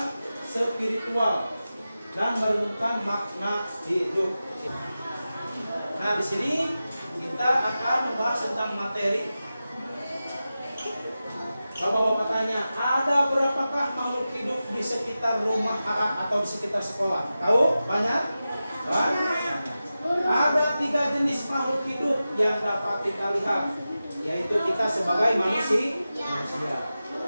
spiritual dan merenungkan makna hidup. Nah, di sini kita akan membahas tentang materi. Bapak-bapak tanya, ada berapakah makhluk hidup di sekitar rumah atau di sekitar sekolah? Tahu? Banyak? Banyak. Ada 3 jenis makhluk hidup yang dapat kita lihat, yaitu kita sebagai manusia.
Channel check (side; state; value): both; inverted; correlation -0.94